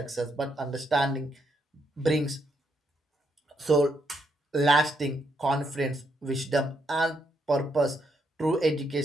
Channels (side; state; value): both; normal; correlation 0.76